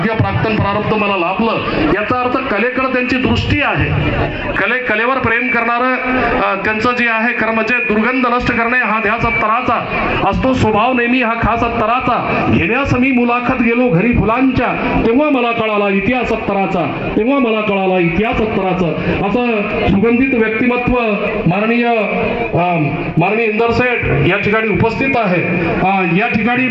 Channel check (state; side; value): identical; both; correlation 1.00